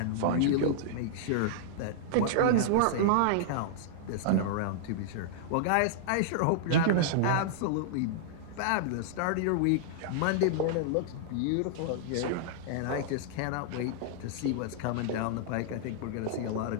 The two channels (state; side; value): different; both; correlation -0.02